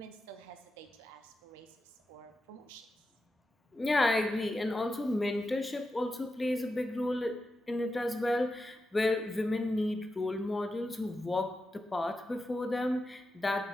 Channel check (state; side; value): normal; both; correlation 0.89